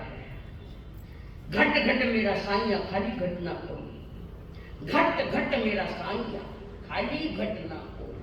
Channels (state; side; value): identical; both; correlation 1.00